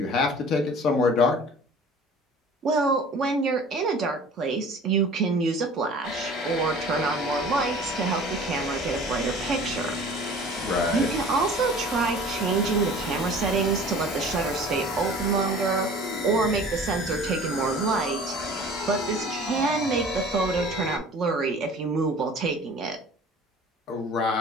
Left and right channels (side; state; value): both; normal; correlation 0.45